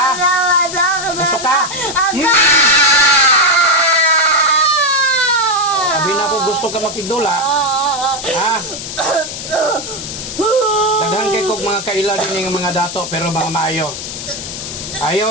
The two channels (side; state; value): left; noise; hiss, 8 dB below the sound